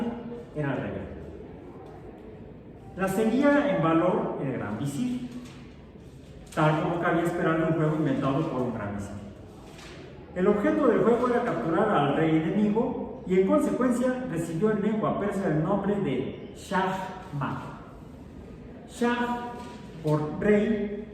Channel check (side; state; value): both; identical; correlation 1.00